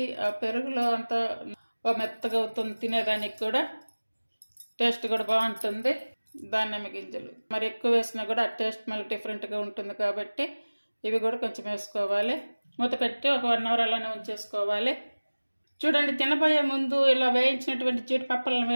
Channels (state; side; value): inverted; both; correlation -1.00